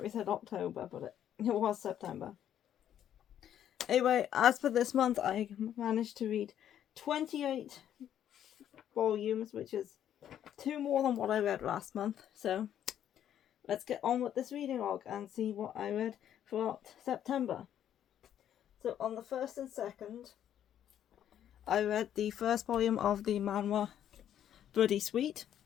said October, but it was September. Anyway, as for this month, I managed to read 28 volumes, which is 2 more than what I read last month. So let's get on with this reading log and see what I read throughout September. So on the 1st and 2nd, I read the first volume of the manhwa Bloody Sweet.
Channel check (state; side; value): quieter; right; 10.3 dB